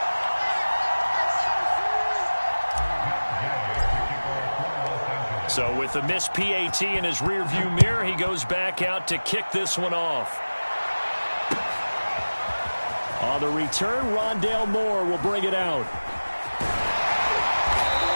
So with the missed PAT in his rearview mirror, he goes back out to kick this one off. On the return, Rondale Moore will bring it out.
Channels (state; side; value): inverted; both; correlation -1.00